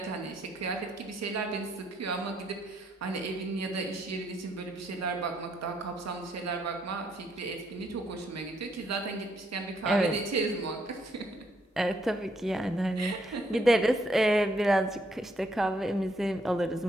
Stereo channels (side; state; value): both; normal; correlation 0.72